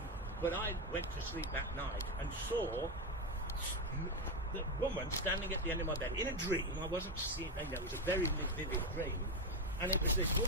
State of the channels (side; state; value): both; normal; correlation 0.11